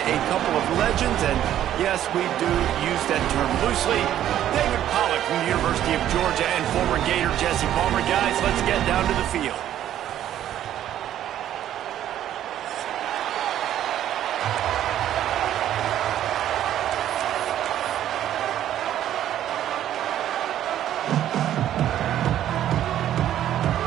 couple of legends, and yes, we do use that term loosely. David Pollack from the University of Georgia and former Gator Jesse Palmer. Guys, let's get down to the field.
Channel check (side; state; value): left; quieter; 11.5 dB